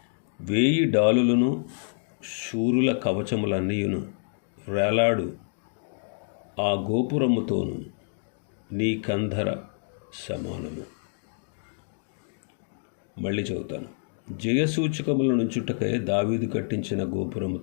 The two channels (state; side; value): silent; right; digital silence